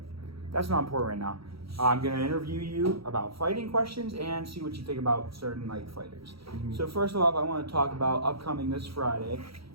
that's not important right now. I'm going to interview you about fighting questions and see what you think about certain fighters. So first off, I want to talk about upcoming this Friday.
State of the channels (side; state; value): left; late; 0.75 ms